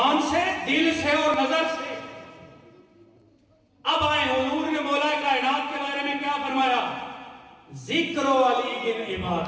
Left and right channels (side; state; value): both; identical; correlation 1.00